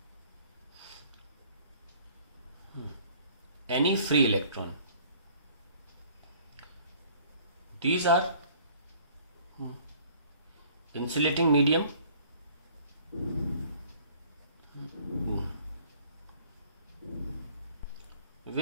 any free electron. These are insulating medium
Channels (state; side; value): inverted; both; correlation -0.55